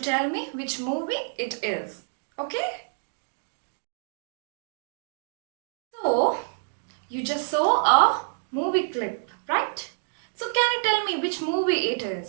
tell me which movie it is. Okay? So you just saw a movie clip, right? So can you tell me which movie it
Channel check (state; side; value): silent; left; digital silence